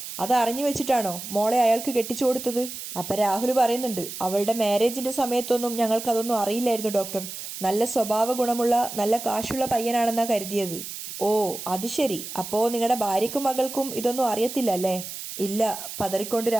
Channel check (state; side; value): noise; right; hiss, 9 dB below the sound